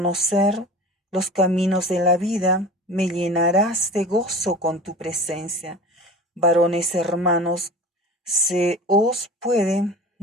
los caminos de la vida, me llenarás de gozo con tu presencia. Varones hermanos, se os puede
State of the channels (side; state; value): both; normal; correlation 0.37